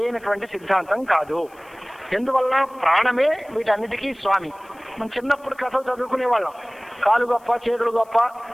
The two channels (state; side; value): noise; left; hiss, 30 dB below the sound